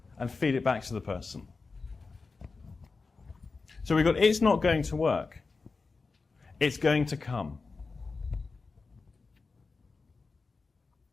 and feed it back to the person. So we've got, it's not going to work. It's going to come.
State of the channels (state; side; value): quieter; right; 4.2 dB